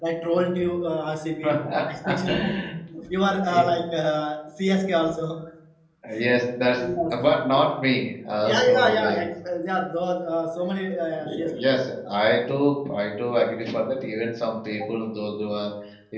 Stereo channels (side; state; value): both; identical; correlation 1.00